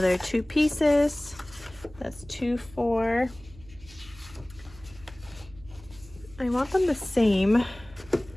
2 pieces. That's 2, 4. I want them the same.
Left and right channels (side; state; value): right; noise; hum, 21 dB below the sound